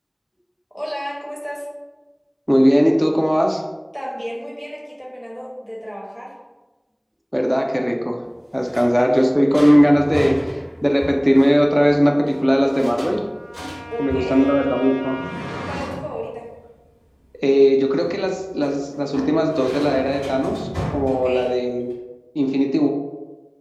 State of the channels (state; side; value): identical; both; correlation 1.00